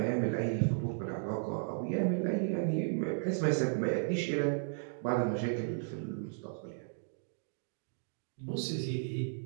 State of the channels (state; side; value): silent; left; digital silence